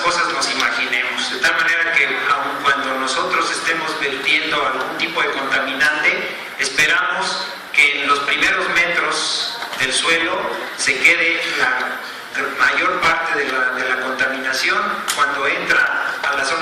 nos imaginemos. De tal manera que aun cuando nosotros estemos vertiendo algún tipo de contaminante, esperamos que en los primeros metros del suelo se quede la mayor parte de la contaminación. Cuando entra a la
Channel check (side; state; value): both; identical; correlation 1.00